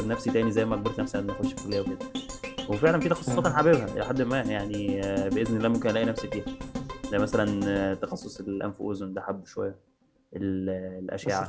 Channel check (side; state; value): both; identical; correlation 1.00